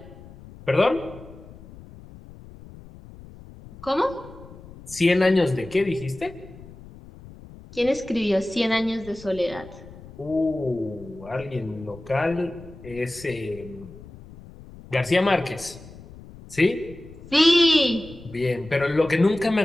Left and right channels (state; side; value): noise; left; rumble, 18 dB below the sound